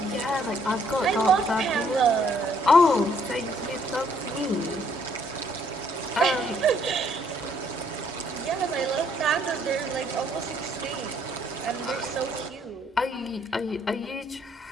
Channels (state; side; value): normal; both; correlation 0.66